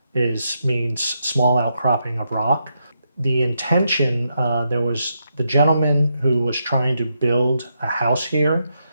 means small outcropping of rock. The intention, there was the gentleman who was trying to build a house here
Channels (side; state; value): both; inverted; correlation -0.81